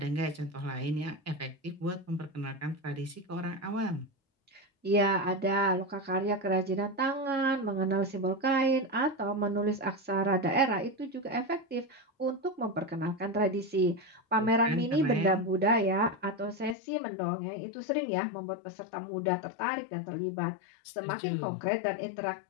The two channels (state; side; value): drops out; right; at 16.8 s